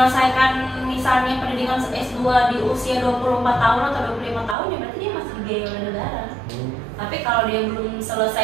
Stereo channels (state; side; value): drops out; left; at 4.5 s